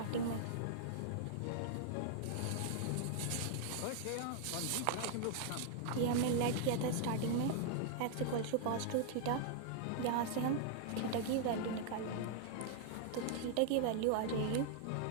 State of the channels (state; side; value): different; both; correlation 0.00